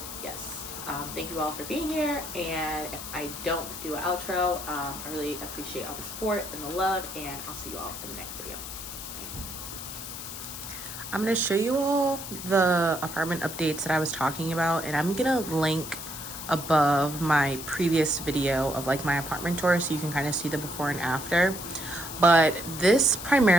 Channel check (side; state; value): left; noise; hiss, 9 dB below the sound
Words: yes, thank you all for being here, and if I don't do an outro, I really appreciate all the support and the love, and I'll see you all in the next video. Bye. I'm going to show you all the apartment updates that I was talking about, and I'm going to link above my previous video of like my apartment tour so you can kind of see the before and after. But this